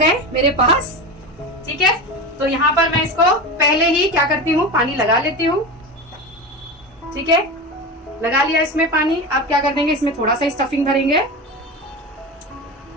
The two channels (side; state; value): both; normal; correlation 0.24